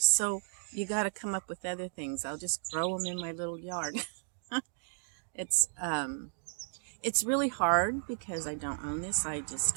so you got to come up with other things. I'll just grow them in my little yard. It's really hard because I don't own this. I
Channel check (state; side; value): silent; left; digital silence